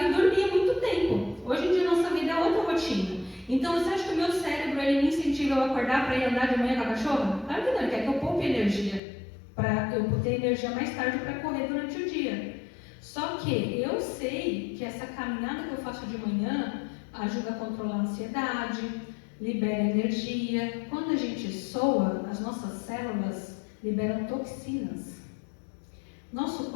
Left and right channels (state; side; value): drops out; right; at 9.0 s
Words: e dormiam muito tempo. Hoje em dia nossa vida é outra rotina. Então você acha que o meu cérebro ele me incentiva a acordar para ir andar de manhã com a cachorra? Claro que não, ele quer que eu poupe energia, para eu ter energia mais tarde para correr durante o dia. Só que eu sei que essa caminhada que eu faço de manhã ajuda a controlar a ansiedade, libera energia. Quando a gente soa, as nossas células liberam toxinas. Nosso